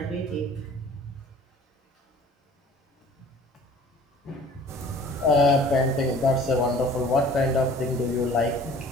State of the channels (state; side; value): normal; both; correlation 0.49